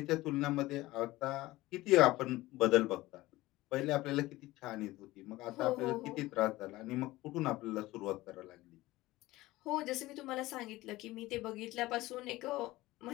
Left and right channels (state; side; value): quieter; right; 18.4 dB